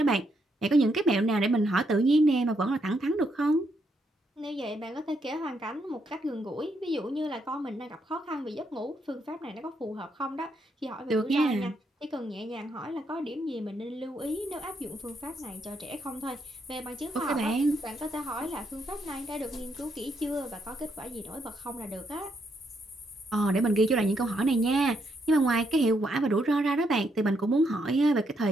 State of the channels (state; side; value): normal; both; correlation 0.77